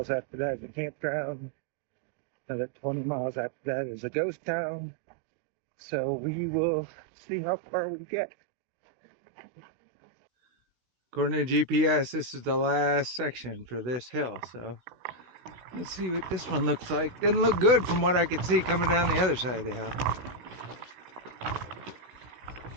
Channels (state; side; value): late; left; 16 ms